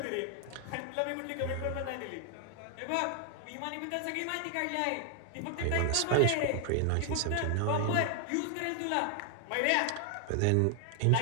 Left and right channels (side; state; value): both; different; correlation 0.00